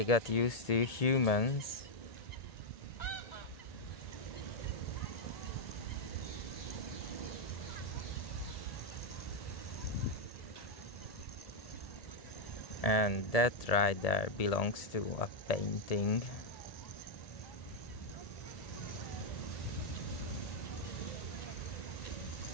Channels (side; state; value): right; late; 1.7 ms